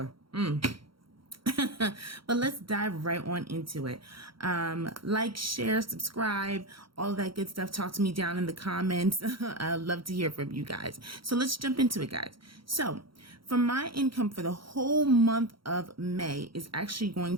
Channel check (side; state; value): left; late; 0.74 ms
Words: But let's dive right on into it. Like, share, subscribe, all that good stuff. Talk to me down in the comments. I'd love to hear from you guys. So let's jump into it, guys. So for my income for the whole month of May is actually going